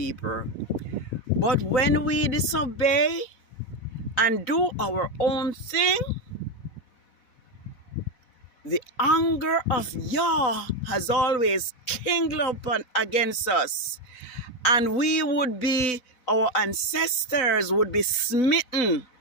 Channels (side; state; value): right; late; 4.0 ms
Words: But when we disobey and do our own thing, the anger of Yah has always kindled up against us. And we would be, our ancestors would be smitten